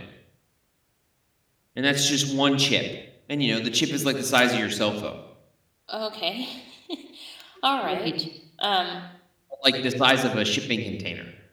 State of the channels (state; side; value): identical; both; correlation 1.00